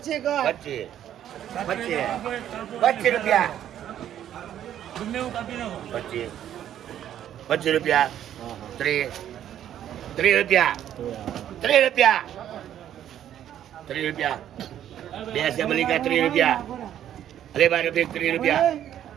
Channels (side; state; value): left; quieter; 10.9 dB